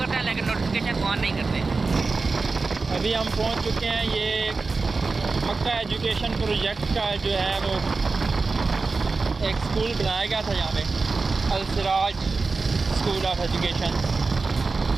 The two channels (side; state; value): left; quieter; 4.1 dB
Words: हैं लेकिन नोटिफिकेशन को ऑन नहीं करते। अभी हम पहुंच चुके हैं, ये मक्का एजुकेशन प्रोजेक्ट का जो है वो एक स्कूल बनाया गया था यहाँ पे, अल सिराज स्कूल ऑफ एजुकेशन।